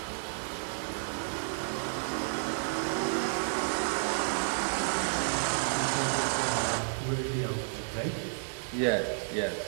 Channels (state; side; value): silent; left; digital silence